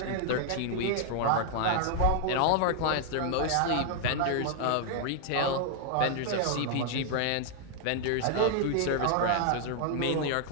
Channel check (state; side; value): different; both; correlation -0.01